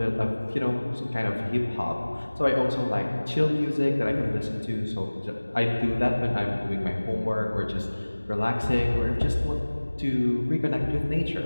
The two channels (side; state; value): both; inverted; correlation -1.00